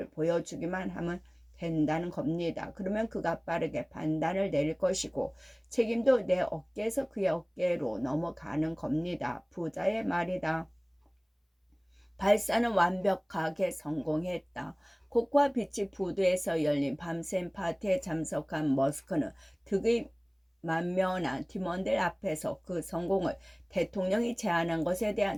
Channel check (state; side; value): identical; both; correlation 1.00